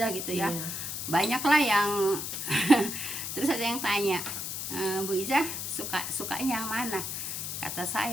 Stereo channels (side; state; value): left; noise; hiss, 4 dB below the sound